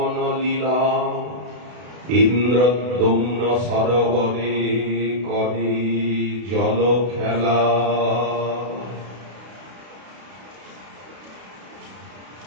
লীলা ইন্দ্রদ্যুম্ন সরোবরে করে জল খেলা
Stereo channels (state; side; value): late; left; 32 ms